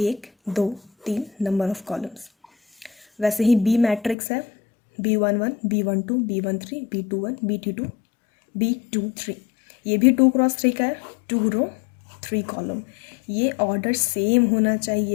2 3 number of columns. वैसे ही बी मैट्रिक्स है, B11, B12, B13, B21, B22, B23, ये भी 2x3 का है, 2 रो 3 कॉलम। ये ऑर्डर सेम होना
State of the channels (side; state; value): right; drops out; at 4.2 s